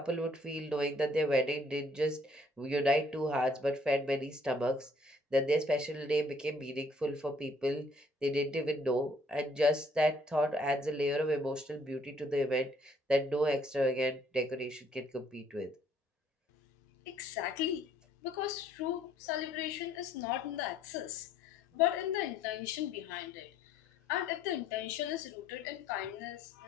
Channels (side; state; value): both; normal; correlation 0.63